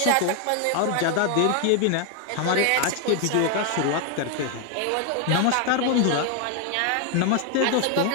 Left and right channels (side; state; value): both; different; correlation 0.01